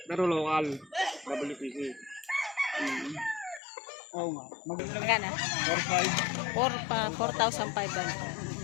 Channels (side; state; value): right; drops out; at 3.6 s